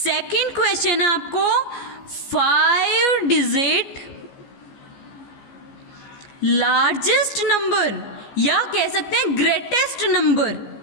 क्वेश्चन है आपको 5 डिजिट लार्जेस्ट नंबर या कह सकते हैं greatest number,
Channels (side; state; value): right; late; 14 ms